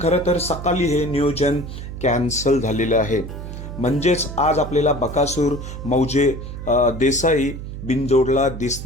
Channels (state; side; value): noise; right; hum, 9 dB below the sound